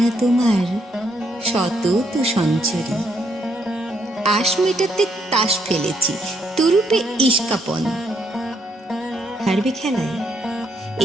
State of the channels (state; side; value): normal; both; correlation 0.74